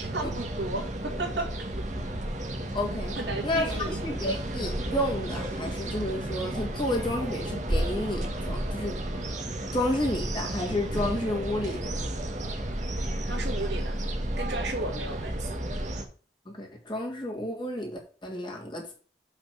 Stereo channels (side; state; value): both; normal; correlation 0.60